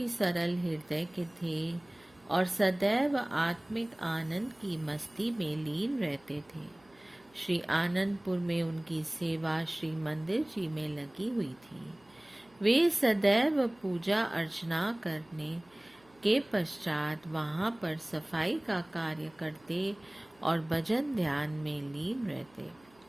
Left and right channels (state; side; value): noise; right; hum, 30 dB below the sound